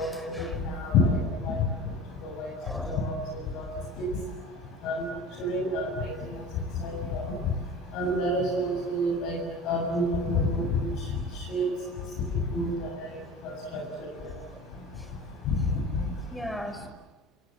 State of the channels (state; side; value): normal; both; correlation 0.37